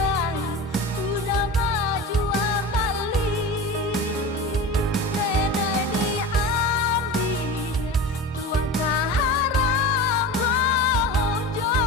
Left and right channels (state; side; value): normal; both; correlation 0.30